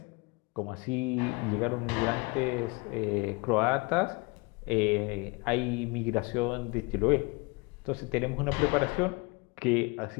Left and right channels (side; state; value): right; quieter; 28.2 dB